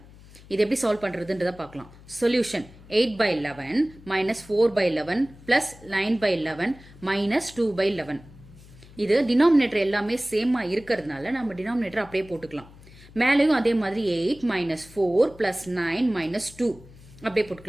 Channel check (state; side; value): noise; left; hum, 21 dB below the sound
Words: இது எப்படி சால்வ் பண்றதுன்றத பார்க்கலாம். Solution 8 by 11 minus 4 by 11 plus 9 by 11 minus 2 by 11. இது டினாமினேட்டர் எல்லாமே சேமா இருக்கிறதுனால நம்ம டினாமினேட்டர் அப்படியே போட்டுக்கலாம். மேலேயும் அதே மாதிரி 8 minus 4 plus 9 minus 2 அப்படியே